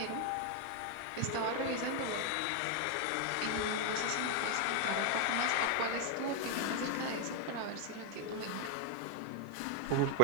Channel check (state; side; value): different; both; correlation 0.00